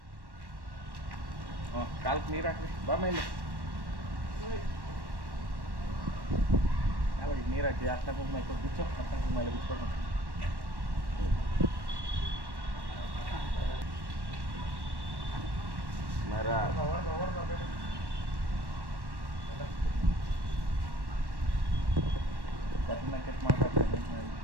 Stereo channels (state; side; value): late; left; 1.1 ms